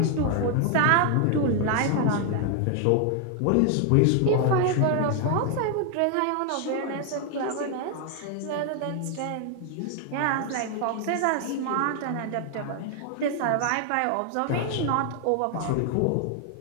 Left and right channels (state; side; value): different; both; correlation 0.00